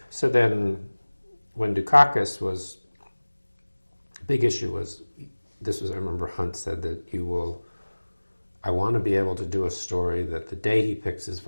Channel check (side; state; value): both; inverted; correlation -1.00